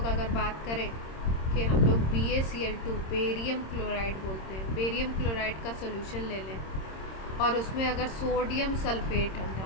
अगर बात करें कि हम लोग BaCl2 बेरियम क्लोराइड बोलते हैं, बेरियम क्लोराइड का सोल्यूशन ले लें और उसमें अगर सोडियम सल्फेट हम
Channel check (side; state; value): right; late; 26 ms